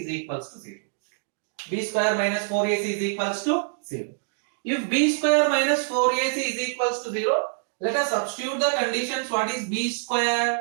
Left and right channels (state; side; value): silent; left; digital silence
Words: equals to 0. B square minus 4ac is equals to 0. If b square minus 4ac is equals to 0, let us substitute the conditions. What is b square?